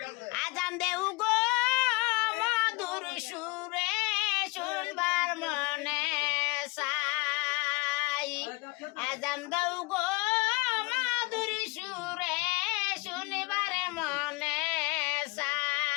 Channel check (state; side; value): quieter; right; 24.7 dB